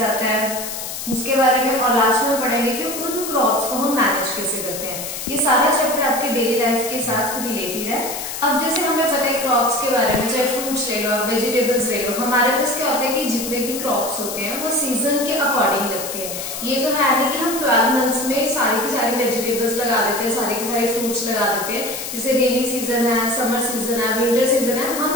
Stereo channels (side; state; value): left; noise; hiss, 7 dB below the sound